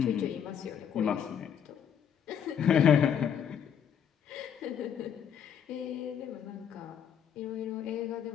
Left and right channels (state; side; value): quieter; right; 8.4 dB